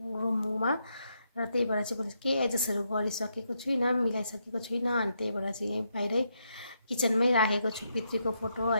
रुममा। र त्यही भएर चाहिँ मैले केही एडजस्टहरू गरिसकेको छुइनँ, मिलाइसकेको छुइनँ। अनि त्यही भएर चाहिँ यहीँ बाहिरै किचनमै राखेको छु पितृको फोटो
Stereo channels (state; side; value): inverted; both; correlation -0.79